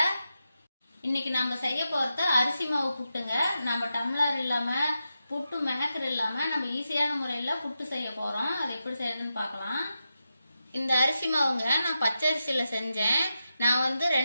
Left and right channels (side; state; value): both; inverted; correlation -0.89